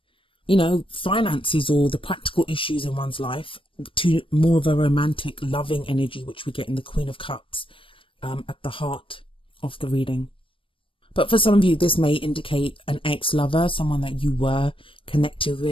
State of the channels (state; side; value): late; right; 0.25 ms